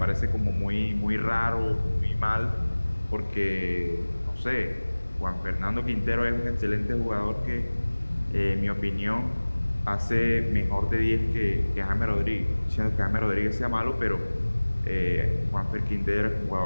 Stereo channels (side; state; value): both; inverted; correlation -1.00